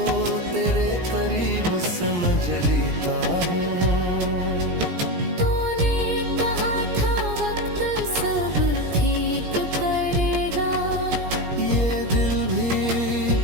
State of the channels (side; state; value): left; late; 17 ms